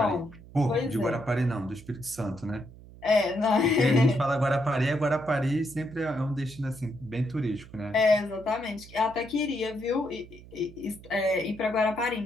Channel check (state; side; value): noise; right; hum, 19 dB below the sound